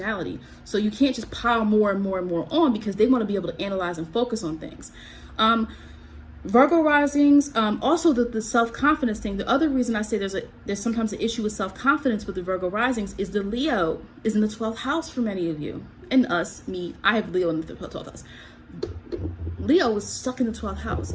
So you can't just pile more and more and more on, because they want to be able to analyze and focus on things. Virgo risings, also the self-confidence thing. The other reason I say there's sometimes an issue with self-confidence with the Virgo risings is the Leo is in the 12th house for many of you. And me, I have Leo in the 12th house. Leo is stuck in the 12th house.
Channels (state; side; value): identical; both; correlation 1.00